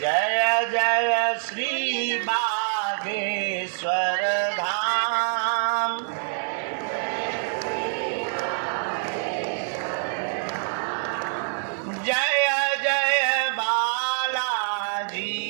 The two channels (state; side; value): silent; left; 61 dB below the other